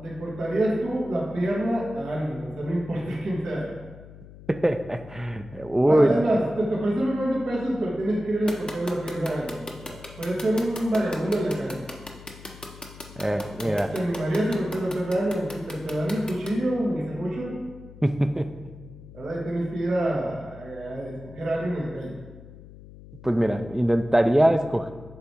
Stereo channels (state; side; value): noise; left; hum, 18 dB below the sound